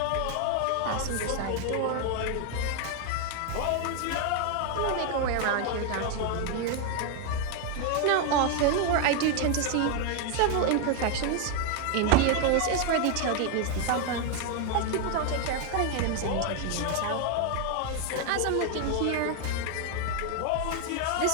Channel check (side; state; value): both; different; correlation 0.00